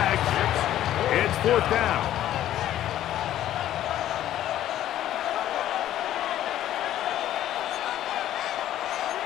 It's fourth down.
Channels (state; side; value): quieter; right; 12.4 dB